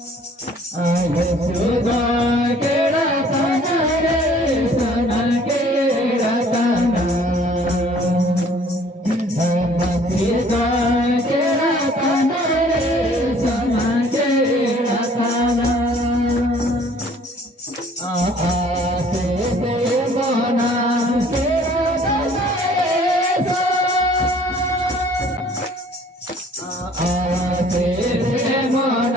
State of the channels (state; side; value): normal; both; correlation 0.55